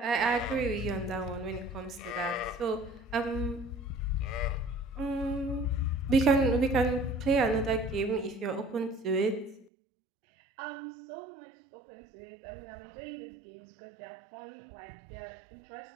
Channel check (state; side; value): drops out; left; at 9.7 s